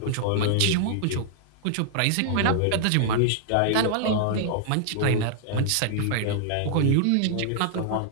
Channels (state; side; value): different; both; correlation -0.01